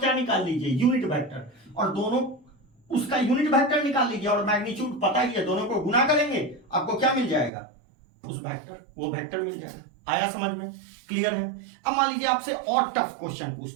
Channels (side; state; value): left; drops out; at 7.5 s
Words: निकाल लीजिए, यूनिट वेक्टर, और दोनों उसका यूनिट वेक्टर निकाल लीजिए, और मैग्नीट्यूड पता ही है, दोनों को गुना करेंगे आपको क्या मिल जाएगा, उस वेक्टर, वो वेक्टर मिल जाएगा। आया समझ में, क्लियर है। अब मान लीजिए आपसे और टफ क्वेश्चन